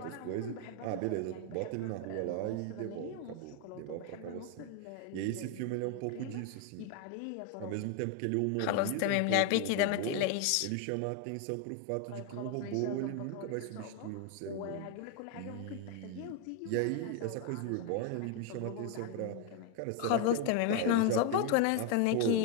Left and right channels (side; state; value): both; different; correlation 0.01